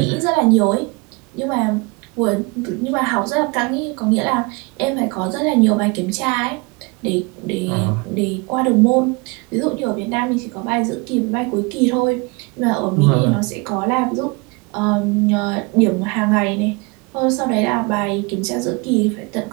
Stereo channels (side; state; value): left; quieter; 28.1 dB